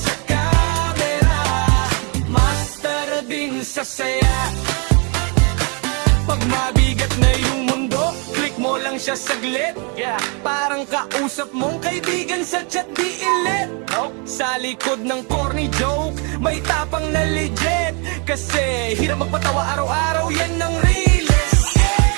camera, master din sa saya. Pag mabigat na yung mundo, click mo lang siya saglit. Parang kausap mong kaibigan sa chat, di ilit. Sa likod ng corny joke, may tapang na legit. Kasi hirap magpatawa araw-araw, yan ang realest.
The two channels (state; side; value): quieter; left; 34.9 dB